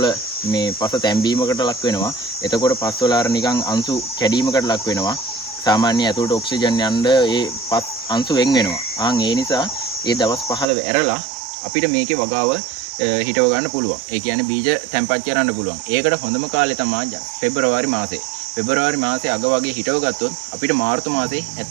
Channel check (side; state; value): left; drops out; at 10.7 s